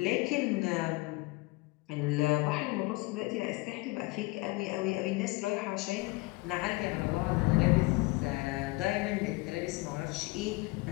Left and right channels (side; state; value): right; quieter; 23.6 dB